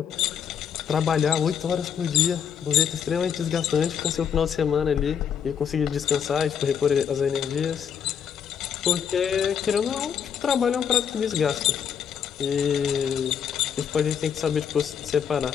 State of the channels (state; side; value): quieter; right; 7.9 dB